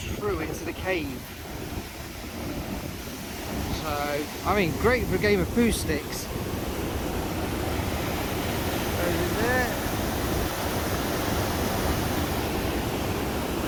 through into the cave. So, I mean, great for a game of poo sticks. Goes in there.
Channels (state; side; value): identical; both; correlation 1.00